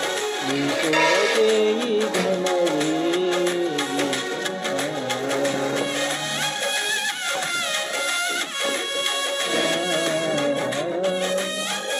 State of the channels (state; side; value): identical; both; correlation 1.00